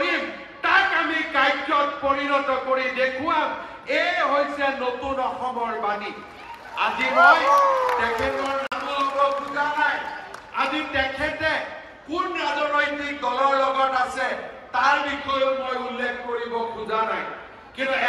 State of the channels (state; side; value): identical; both; correlation 1.00